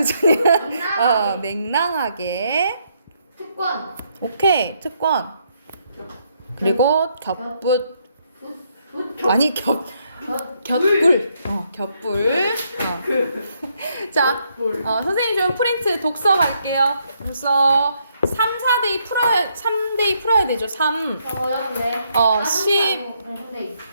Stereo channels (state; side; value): inverted; both; correlation -0.74